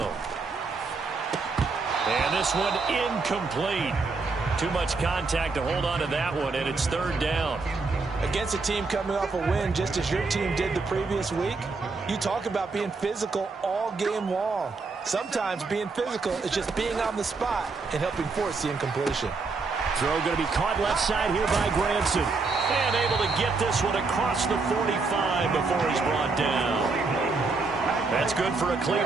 And this one incomplete. Too much contact to hold on to that one, and it's third down. Against a team coming off a win just as your team did the previous week, you talk about being physical all game long. Sometimes being physical is just being on the spot and helping force the incompletion. Throw going to be caught left side here by Granson. And able to get this one across the 45 before he's brought down. That's good for a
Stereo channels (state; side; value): quieter; left; 4.1 dB